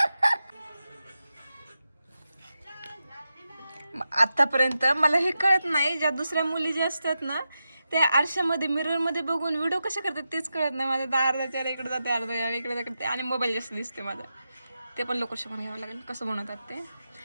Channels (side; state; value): both; inverted; correlation -0.89